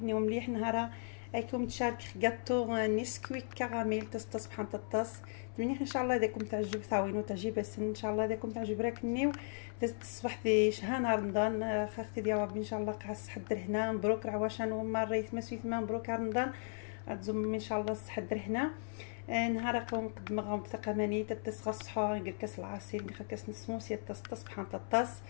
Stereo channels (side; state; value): right; silent; 53 dB below the other